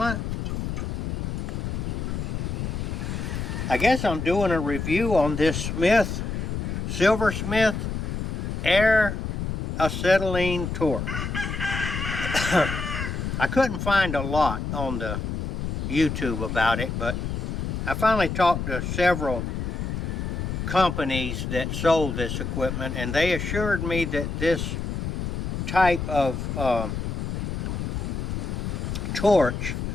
I guess I'm doing a review on this Silversmith Air Acetylene Torch. I couldn't find a lot on the YouTube about it, but I finally talked to several companies that sold this equipment, and they assured me that this type of torch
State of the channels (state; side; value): noise; left; rumble, 3 dB below the sound